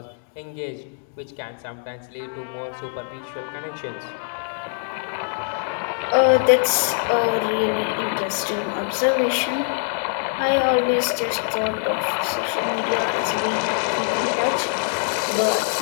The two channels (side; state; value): right; silent; 62 dB below the other